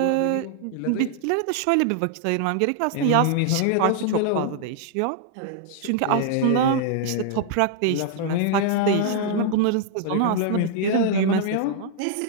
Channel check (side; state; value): both; different; correlation -0.01